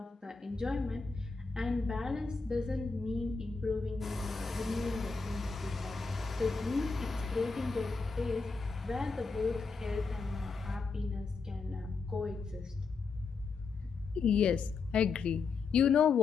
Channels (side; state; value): right; quieter; 4.6 dB